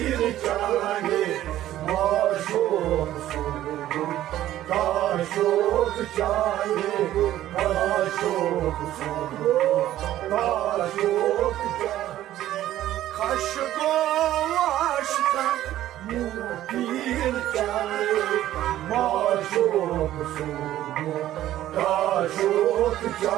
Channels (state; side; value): quieter; left; 13.4 dB